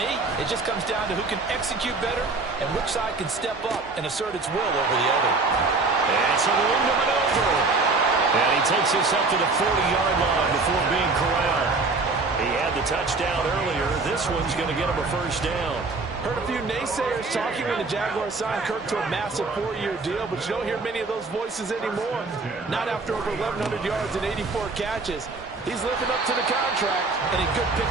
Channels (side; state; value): left; quieter; 3.8 dB